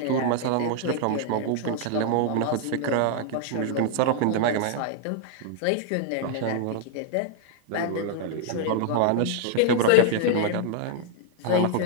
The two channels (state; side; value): different; both; correlation 0.00